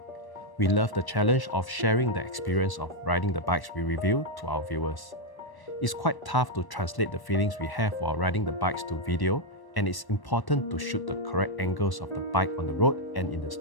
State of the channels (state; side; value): late; right; 1.1 ms